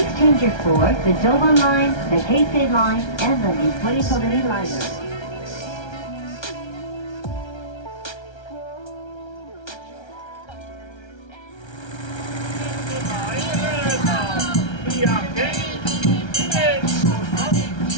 change your for the Joban line, the Heisei line, and the Nippori Todori liner.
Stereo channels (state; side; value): late; right; 1.3 ms